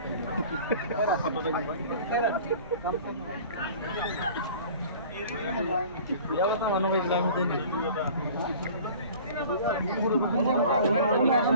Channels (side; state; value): both; inverted; correlation -0.44